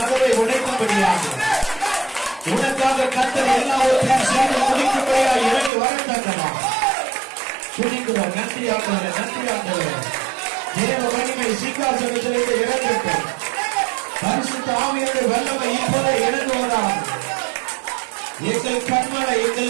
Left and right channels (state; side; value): drops out; left; at 5.7 s